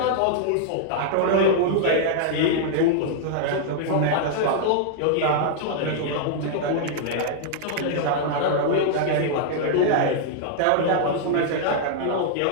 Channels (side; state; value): both; different; correlation -0.01